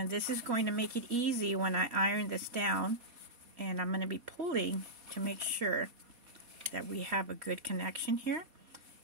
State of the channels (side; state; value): left; late; 4.2 ms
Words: this is going to make it easy when I iron this down, and I'm going to be pulling to make sure that we have a good connection here.